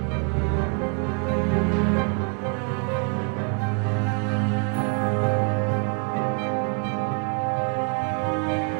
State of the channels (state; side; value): quieter; left; 37.9 dB